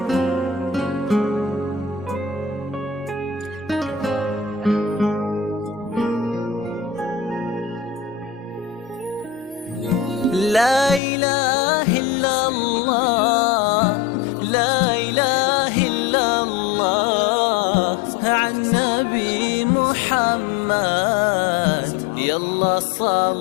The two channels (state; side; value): drops out; right; at 11.0 s